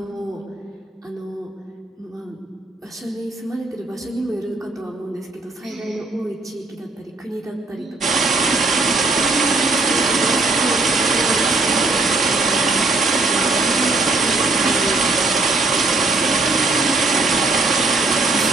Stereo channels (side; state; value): left; quieter; 3.4 dB